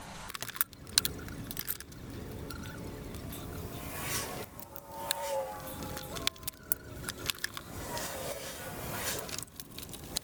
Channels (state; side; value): identical; both; correlation 1.00